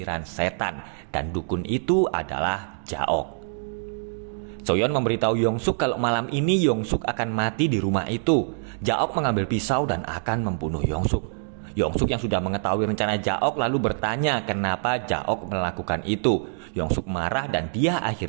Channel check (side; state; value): left; silent; digital silence